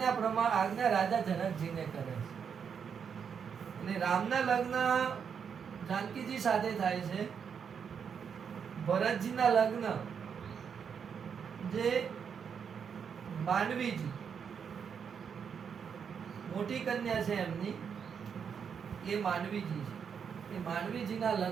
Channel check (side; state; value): left; quieter; 7.0 dB